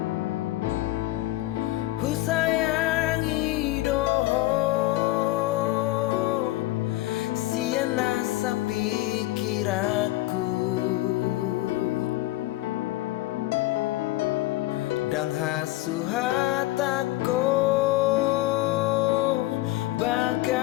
Husayangi doho siana sa pikiraku dan hasuhatako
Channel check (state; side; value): quieter; right; 17.3 dB